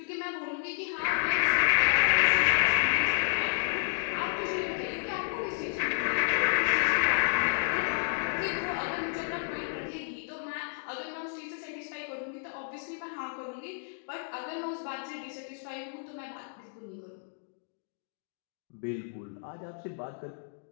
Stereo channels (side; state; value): right; silent; digital silence